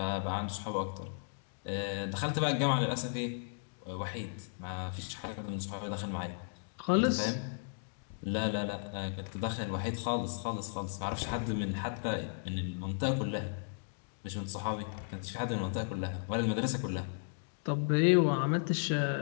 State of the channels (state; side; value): silent; right; digital silence